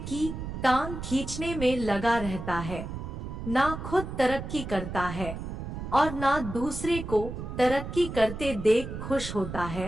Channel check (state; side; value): noise; right; rumble, 7 dB below the sound